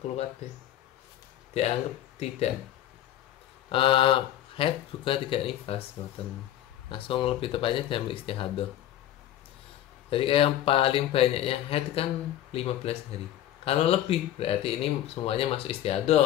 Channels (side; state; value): right; quieter; 12.3 dB